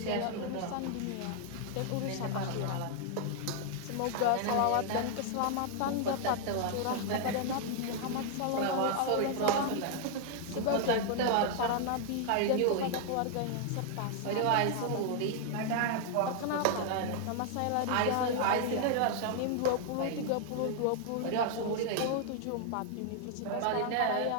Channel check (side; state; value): both; different; correlation 0.00